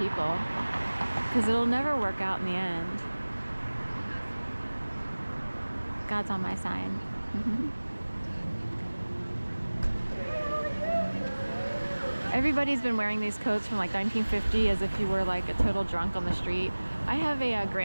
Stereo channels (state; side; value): inverted; both; correlation -1.00